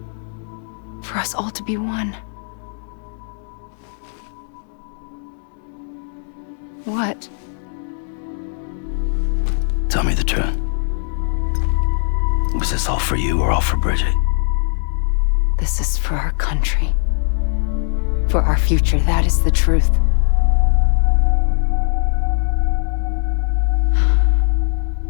For us all to be one. What? Tell me the truth. Was this all for you or all for Bridget? This is for our country. For our future, that is the truth.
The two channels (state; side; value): silent; right; digital silence